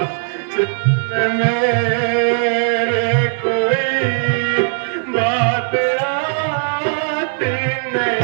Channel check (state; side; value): silent; left; digital silence